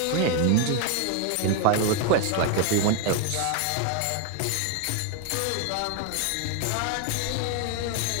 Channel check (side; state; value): both; different; correlation 0.00